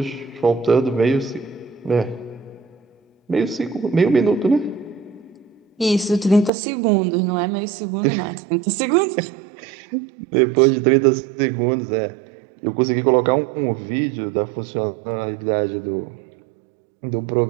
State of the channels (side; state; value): left; drops out; at 6.5 s